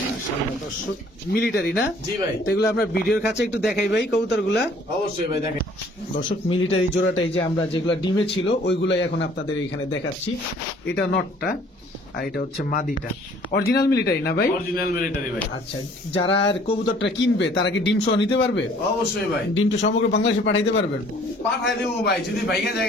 দর্শক মিলিটারি না? জি ভাই। তো এগুলো আমরা ভিডিওর কাছে একটু দেখাই ভাই কবুতর গুলা। অবশ্যই ভাই দেখেন। দর্শক মিলিটারি জোড়াটাই যে আমরা যেগুলা ডিমে ছিল ওইগুলাই এখন আপনাদের এখানে দেখাচ্ছি। এটা নটটা, আর এটা হচ্ছে মাদিটা। অরিজিনাল মিলিটারি না ভাই? অরিজিনাল মিলিটারি ভাই। আচ্ছা, যারা আর কবুতরটা কিনবে তারা কি ডিম সহ নিতে পারবে? অবশ্যই ভাই। ডিমটা সমগ্র বাংলাদেশে পাঠাইতে পারবেন? পাঠাই দেবো ভাই, যদি ভাইগা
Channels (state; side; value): normal; both; correlation 0.56